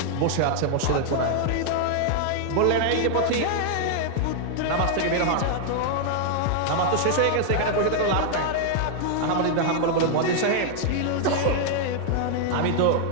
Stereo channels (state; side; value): different; both; correlation 0.00